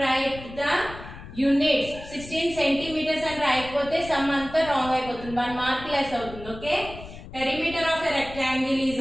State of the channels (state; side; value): noise; left; rumble, 14 dB below the sound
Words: write the units. 16 centimeters and రాయకపోతే some అంతా wrong అయిపోతుంది. 1 mark less అవుతుంది. Okay. Perimeter of a rectangle is